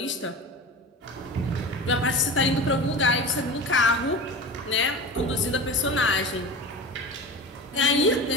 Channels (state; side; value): normal; both; correlation 0.31